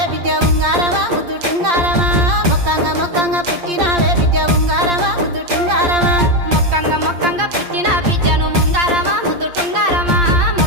బిడ్డ ఉంగారమా ముద్దు టుంగారమా మొక్కంగా మొక్కంగా పుట్టినావే బిడ్డ ఉంగారమా ముద్దు టుంగారమా మొక్కంగా మొక్కంగా పుట్టిన బిడ్డను ఉంగారమా ముద్దు టుంగారమా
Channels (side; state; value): left; late; 8.7 ms